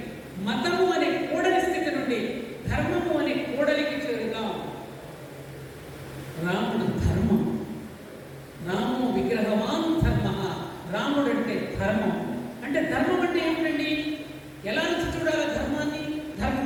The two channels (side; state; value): both; identical; correlation 1.00